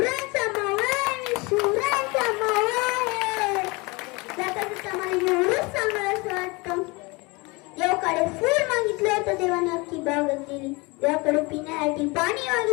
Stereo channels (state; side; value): quieter; right; 26.1 dB